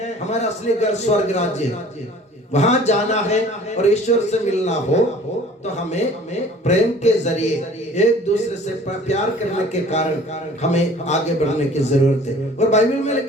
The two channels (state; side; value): normal; both; correlation 0.49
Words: हमारा असली घर स्वर्ग राज्य है, वहां जाना है और ईश्वर से मिलना हो तो हमें प्रेम के जरिए एक दूसरे से प्यार करने के कारण हमें आगे बढ़ने की जरूरत है। और बाइबल में